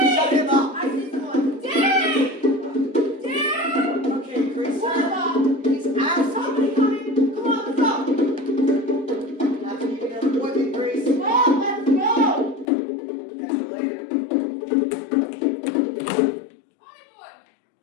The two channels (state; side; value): drops out; right; at 12.7 s